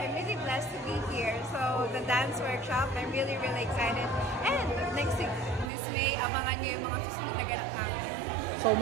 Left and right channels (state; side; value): drops out; left; at 5.7 s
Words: I'm really blessed to be here. So the dance workshop, I'm really excited. And next week, Miss May, abangan niyo yung mga susunod na ganap namin. So